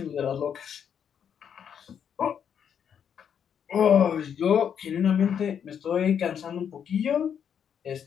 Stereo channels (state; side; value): quieter; right; 8.1 dB